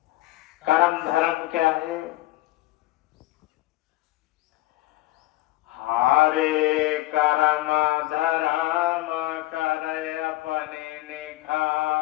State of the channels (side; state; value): right; quieter; 17.8 dB